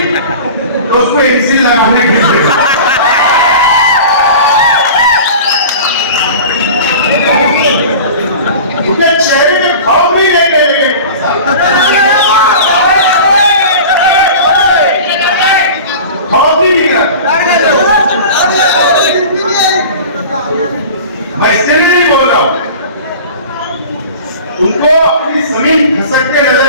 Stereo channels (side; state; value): both; inverted; correlation -0.37